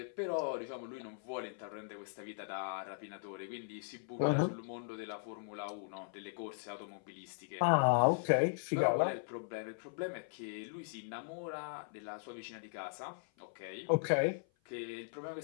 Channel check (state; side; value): silent; right; 52 dB below the other